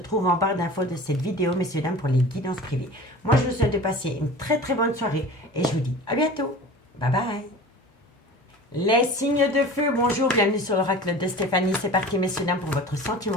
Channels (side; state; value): both; normal; correlation 0.39